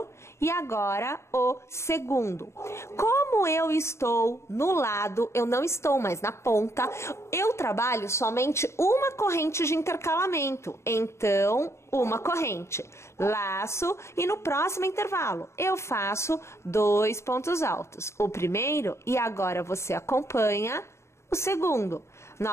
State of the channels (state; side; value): late; right; 0.13 ms